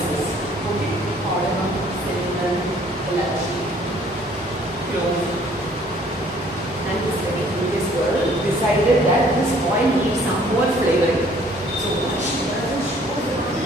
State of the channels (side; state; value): both; normal; correlation 0.58